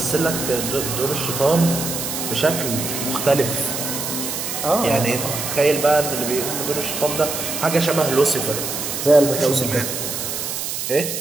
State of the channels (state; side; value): noise; right; hiss, 4 dB below the sound